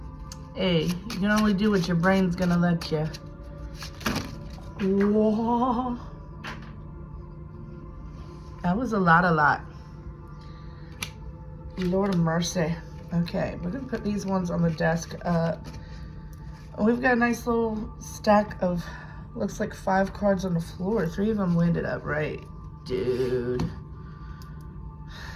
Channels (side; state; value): both; identical; correlation 1.00